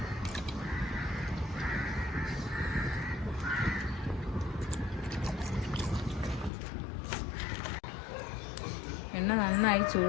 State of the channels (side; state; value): right; drops out; at 6.5 s